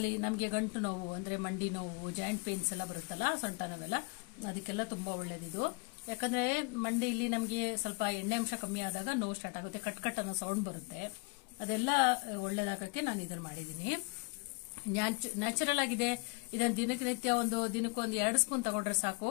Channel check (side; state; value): right; quieter; 29.8 dB